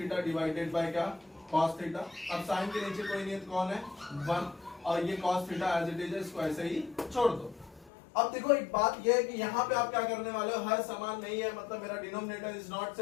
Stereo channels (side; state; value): right; drops out; at 7.9 s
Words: डिवाइडेड बाय क्या, कॉस थीटा। अब साइन के नीचे कोई नहीं है, कौन है, 1, और ये cos theta as it is, इसको ऐसे ही छोड़ दो। अब देखो एक बात ये है कि यहाँ पे आप क्या करने वाले हो, हर समान नहीं है, मतलब मेरा denominator is not